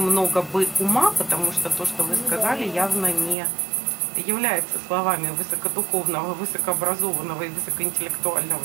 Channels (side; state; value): left; drops out; at 3.4 s